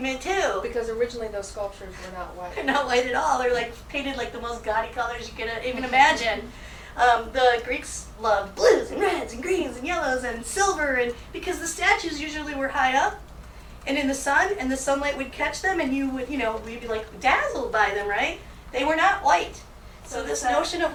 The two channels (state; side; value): identical; both; correlation 1.00